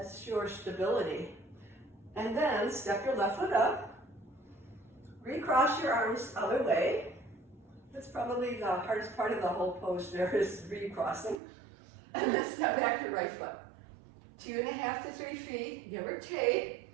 your stability. And then step your left foot up. Recross your arms other way. That's probably the hardest part of the whole pose there is recrossing. And then step back your right foot. 2.5 to 3 feet, give or take.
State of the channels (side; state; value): left; drops out; at 11.4 s